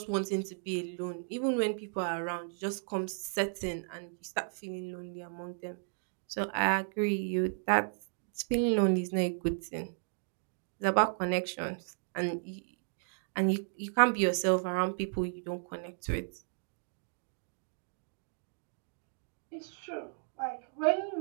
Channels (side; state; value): left; silent; digital silence